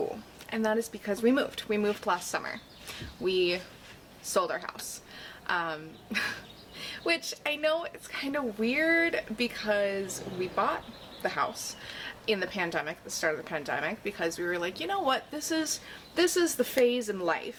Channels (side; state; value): both; identical; correlation 1.00